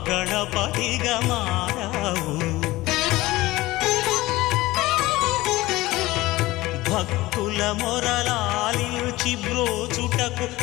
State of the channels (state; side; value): quieter; right; 18.8 dB